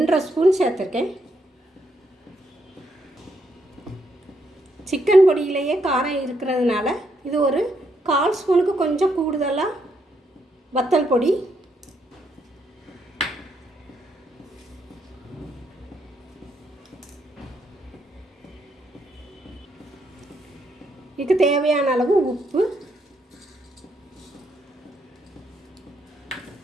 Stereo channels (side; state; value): both; normal; correlation 0.76